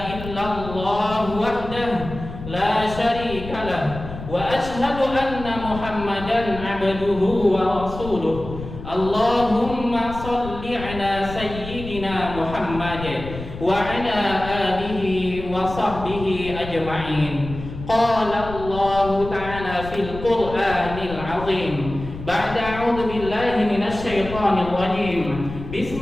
إلا الله وحده لا شريك له وأشهد أن محمدا عبده ورسوله اللهم صل على سيدنا محمد وعلى آله وصحبه أجمعين. قال الله تعالى في القرآن العظيم بعد أعوذ بالله من الشيطان الرجيم بسم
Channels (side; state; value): left; noise; rumble, 11 dB below the sound